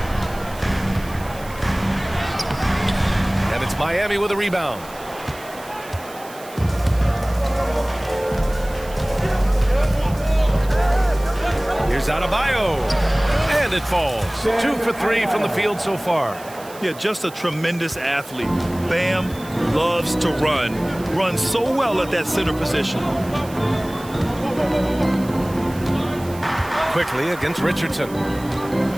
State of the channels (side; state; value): right; noise; hiss, 19 dB below the sound